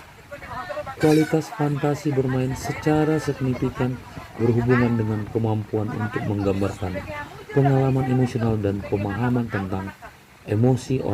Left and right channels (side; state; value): both; identical; correlation 1.00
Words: kualitas fantasi bermain secara signifikan berhubungan dengan kemampuan untuk menggambarkan pengalaman emosional dan pemahaman tentang emosi